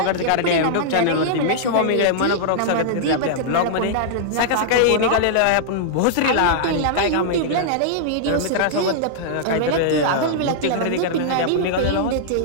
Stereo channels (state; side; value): different; both; correlation -0.02